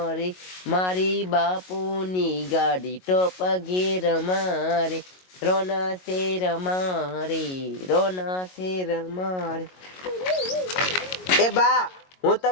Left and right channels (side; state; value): right; late; 22 ms